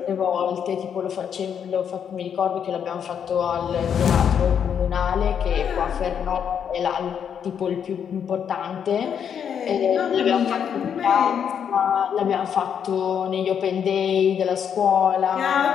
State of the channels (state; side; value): quieter; right; 8.0 dB